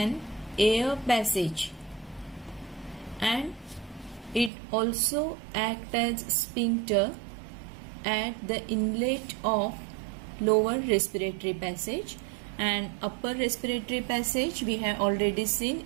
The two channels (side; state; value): left; drops out; at 4.5 s